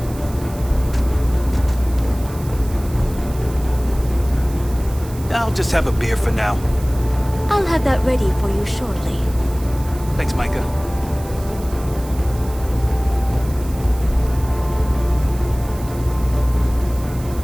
I'll just have a beer for now. I'll have that ready for you shortly. Thanks, Micah.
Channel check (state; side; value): noise; right; hiss, 18 dB below the sound